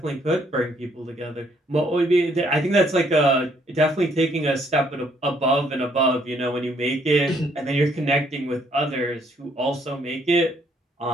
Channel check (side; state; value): both; normal; correlation 0.68